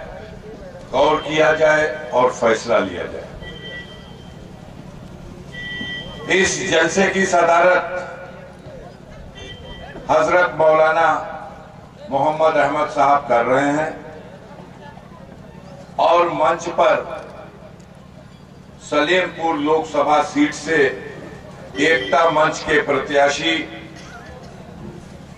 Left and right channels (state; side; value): identical; both; correlation 1.00